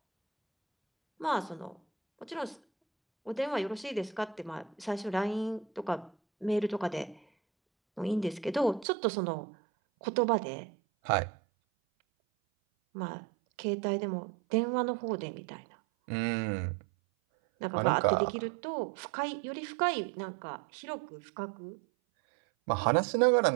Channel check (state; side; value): drops out; left; at 8.8 s